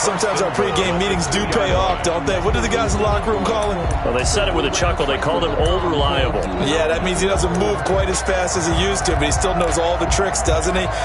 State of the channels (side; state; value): both; identical; correlation 1.00